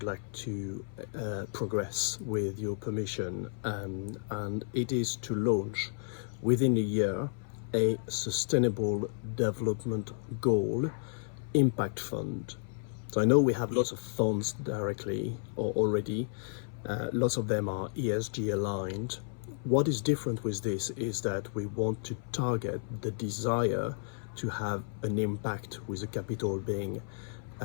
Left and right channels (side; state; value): right; silent; 56 dB below the other